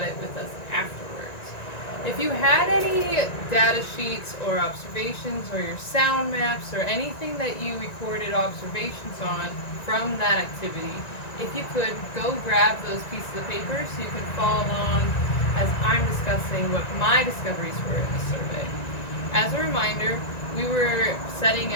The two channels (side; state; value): right; late; 1.9 ms